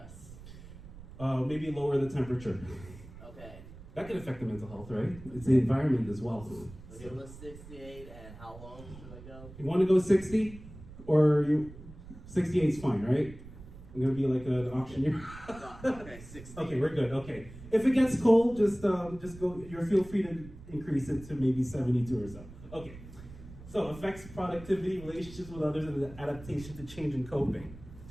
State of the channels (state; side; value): noise; right; rumble, 16 dB below the sound